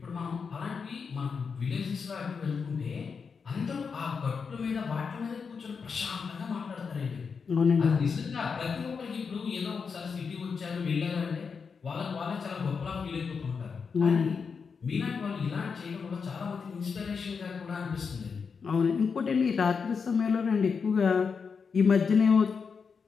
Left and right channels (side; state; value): right; quieter; 5.6 dB